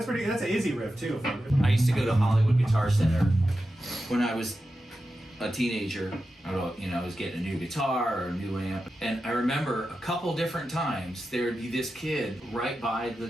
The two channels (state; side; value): normal; both; correlation 0.91